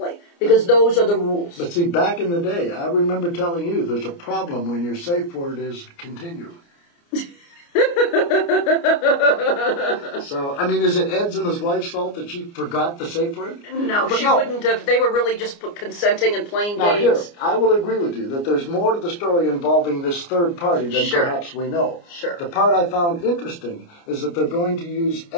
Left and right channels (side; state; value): right; late; 29 ms